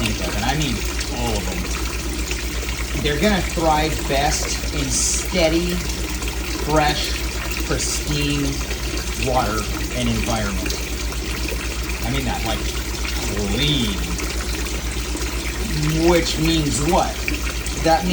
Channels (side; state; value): both; identical; correlation 1.00